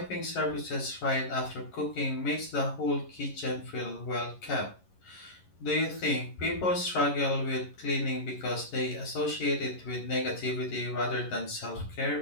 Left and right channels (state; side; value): late; right; 11 ms